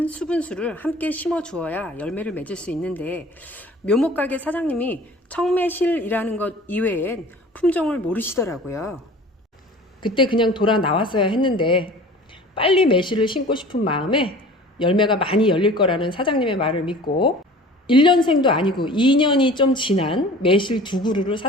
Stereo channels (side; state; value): both; normal; correlation 0.44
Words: 수분수를 함께 심어 주어야 열매를 맺을 수 있는데 묘목가게 사장님이 청매실이라는 것 이외엔 품종을 모르시더라고요. 그때 그냥 돌아 나왔어야 했는데 빨리 매실을 심고 싶은 마음에 열매가 많이 열릴 거라는 사장님의 말을 믿고 1년생도 아니고 2년이 좀 지난 매실 2그루를